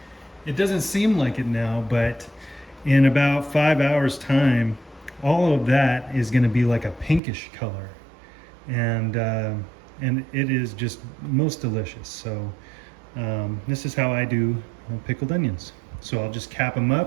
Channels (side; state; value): left; drops out; at 7.2 s